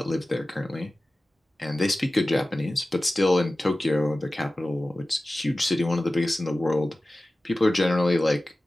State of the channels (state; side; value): normal; both; correlation 0.96